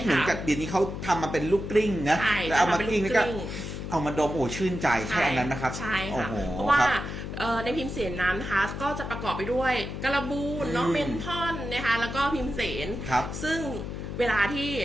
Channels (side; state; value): left; noise; hum, 6 dB below the sound